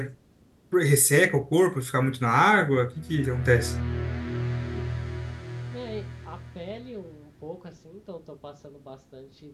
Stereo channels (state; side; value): identical; both; correlation 1.00